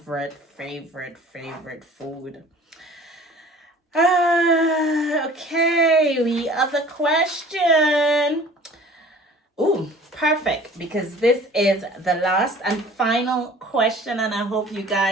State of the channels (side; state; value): both; normal; correlation 0.47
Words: food. Okay, the other question. Ooh, perfect, because this is the last and final question, and I hope you